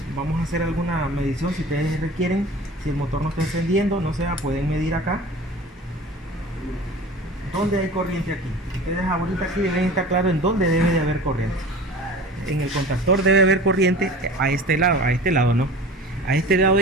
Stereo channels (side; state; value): both; normal; correlation 0.40